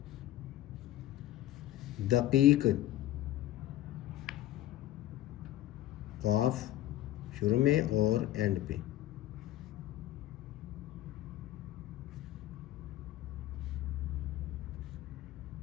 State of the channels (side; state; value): right; quieter; 14.1 dB